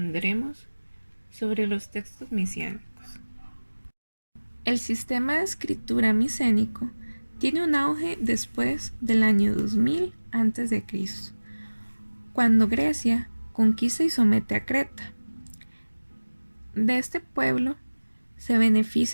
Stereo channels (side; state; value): both; inverted; correlation -1.00